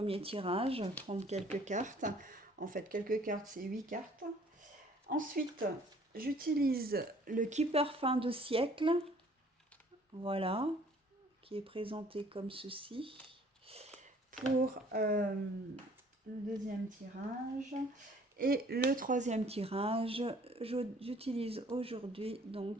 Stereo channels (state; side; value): normal; both; correlation 0.56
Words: tirage, prendre quelques cartes. En fait, quelques cartes, c'est 8 cartes. Ensuite, j'utilise le Keeper fin de siècle. Voilà, qui est présenté comme ceci. Pour le deuxième tirage. Et le troisième tirage, j'utilise aujourd'hui,